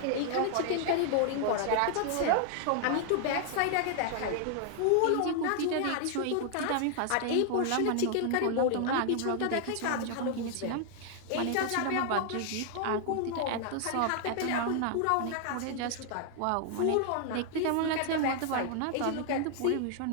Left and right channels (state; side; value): different; both; correlation 0.00